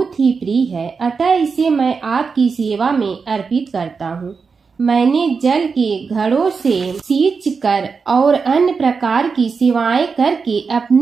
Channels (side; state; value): left; quieter; 5.2 dB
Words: ही प्रिय है, अतः इसे मैं आपकी सेवा में अर्पित करता हूँ। मैंने जल के घड़ों से सींच कर और अन्य प्रकार की सेवाएं करके